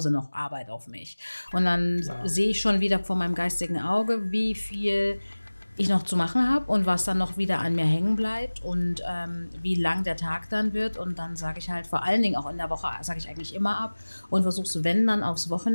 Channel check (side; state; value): both; inverted; correlation -1.00